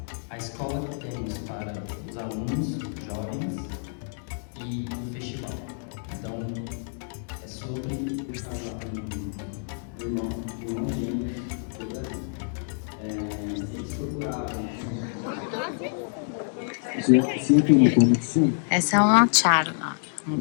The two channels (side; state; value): right; silent; digital silence